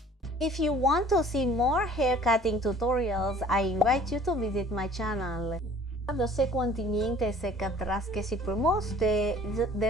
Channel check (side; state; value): both; normal; correlation 0.51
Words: If you want to see more hair cutting tutorials, I invite you to visit my channel. Yo sé continuamente se catras que si promotes the